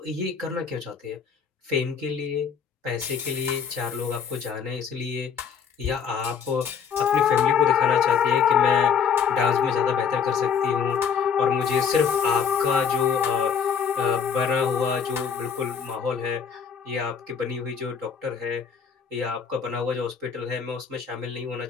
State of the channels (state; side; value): quieter; right; 6.9 dB